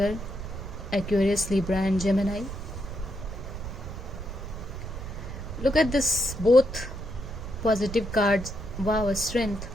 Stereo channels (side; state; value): right; noise; rumble, 8 dB below the sound